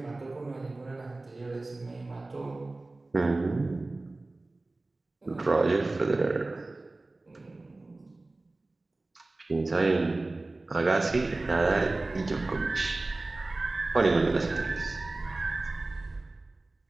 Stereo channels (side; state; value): left; quieter; 3.1 dB